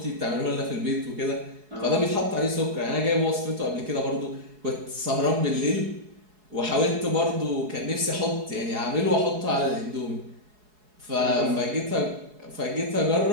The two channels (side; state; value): left; late; 4.7 ms